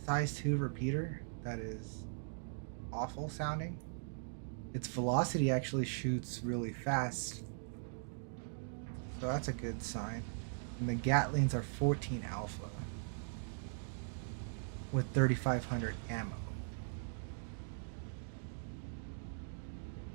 2 repeater. That is awful sounding. Its velocity actually shoots really fast, so that's a good sign. And the Gatlings are 14 alpha with 3500 ammo.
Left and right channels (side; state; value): left; silent; digital silence